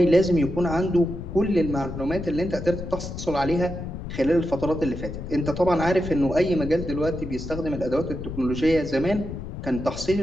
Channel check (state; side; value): noise; left; rumble, 8 dB below the sound